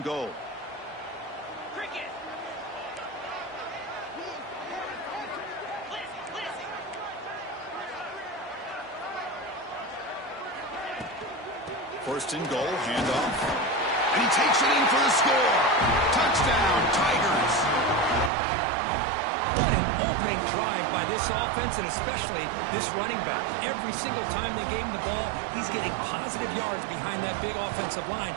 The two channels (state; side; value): drops out; left; at 18.3 s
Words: goal. First and goal, handoff. And he takes it in for the score. Touchdown, Tigers. What an opening drive by this offense, and especially this running back. Every single time they gave him the ball, he's getting positive yards behind that big offensive line.